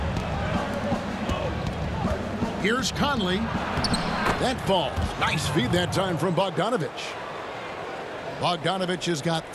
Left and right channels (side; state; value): both; identical; correlation 1.00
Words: Here's Conley. That falls. Nice feed that time from Bogdanovich. Bogdanovich has got